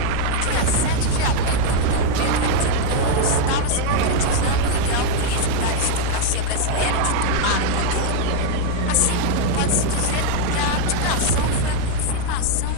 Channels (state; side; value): different; both; correlation 0.00